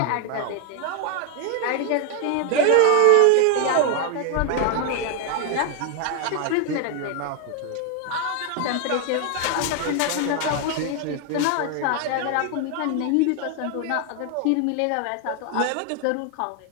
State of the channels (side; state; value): both; different; correlation 0.00